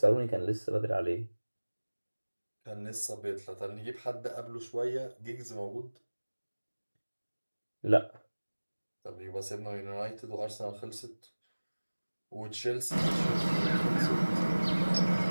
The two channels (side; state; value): both; inverted; correlation -1.00